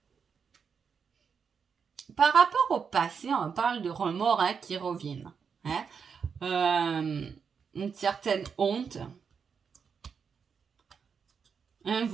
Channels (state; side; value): quieter; left; 6.3 dB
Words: Par rapport au passé, on parle de remords hein, qui reviennent. Hein. Une certaine honte. Un